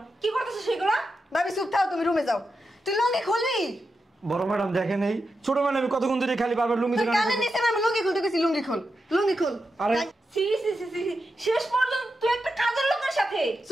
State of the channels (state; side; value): normal; both; correlation 0.88